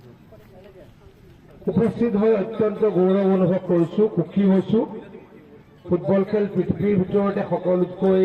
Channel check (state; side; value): identical; both; correlation 1.00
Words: উপস্থিত হৈ অত্যন্ত গৌৰৱ অনুভৱ কৰিছোঁ, সুখী হৈছোঁ। ফুটবল খেল পৃথিৱীৰ ভিতৰতে সকলোতকৈ